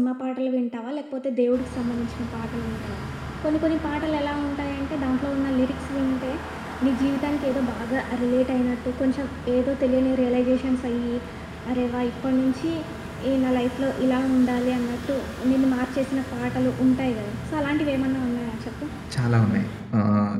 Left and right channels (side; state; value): both; identical; correlation 1.00